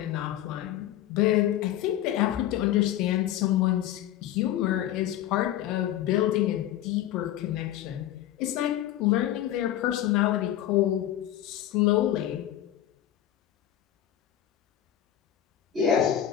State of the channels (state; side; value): quieter; right; 12.2 dB